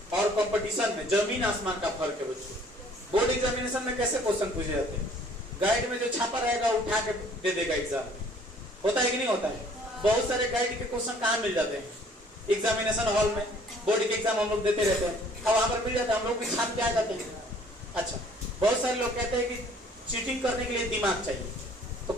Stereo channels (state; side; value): normal; both; correlation 0.56